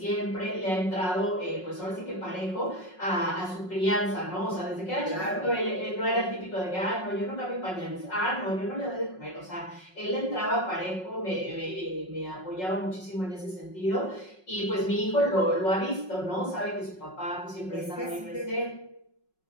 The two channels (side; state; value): right; late; 5.4 ms